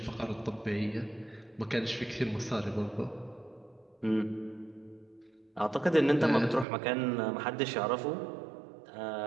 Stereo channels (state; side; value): drops out; left; at 6.7 s